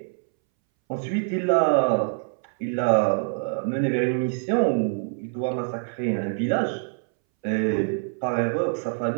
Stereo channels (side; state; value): left; silent; 62 dB below the other